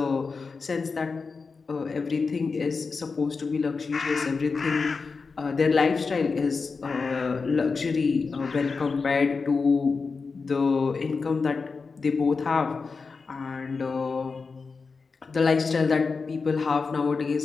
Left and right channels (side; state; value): right; quieter; 4.6 dB